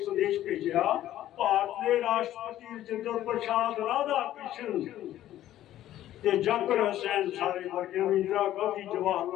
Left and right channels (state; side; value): quieter; right; 13.0 dB